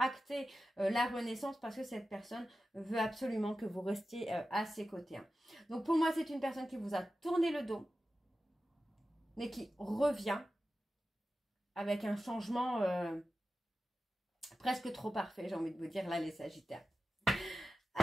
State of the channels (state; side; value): normal; both; correlation 0.93